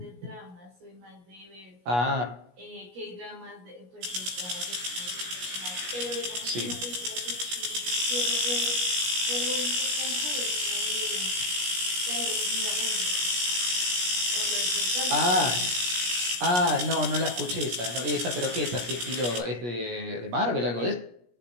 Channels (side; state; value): left; late; 17 ms